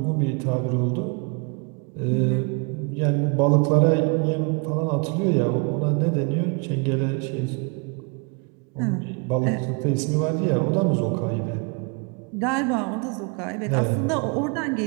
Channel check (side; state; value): left; quieter; 32.7 dB